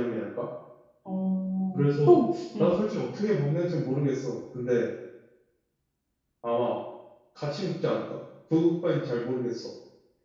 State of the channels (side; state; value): both; identical; correlation 1.00